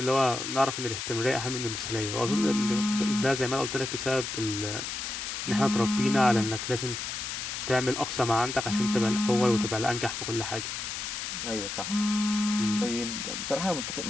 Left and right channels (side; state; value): left; noise; hiss, 5 dB below the sound